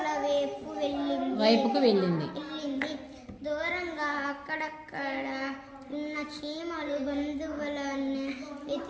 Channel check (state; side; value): identical; both; correlation 1.00